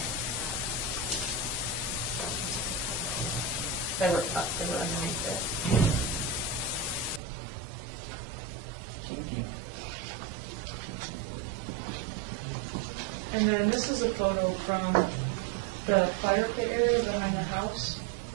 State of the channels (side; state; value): left; drops out; at 7.2 s